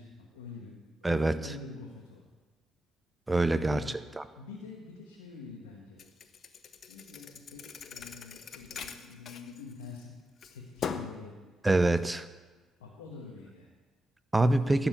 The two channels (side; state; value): both; normal; correlation 0.91